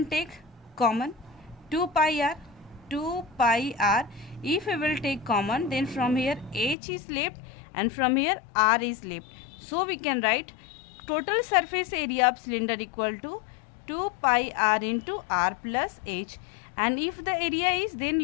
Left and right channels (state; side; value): drops out; right; at 6.8 s